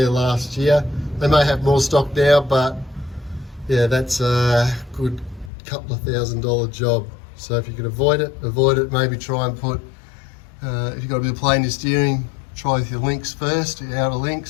last year. They may have more stock now, but yeah, that's a good couple of $1,000 job. So if you can avoid it, maybe try and put, if you've got a bit of play in your steering, try with your links first, your outer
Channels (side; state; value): right; drops out; at 5.5 s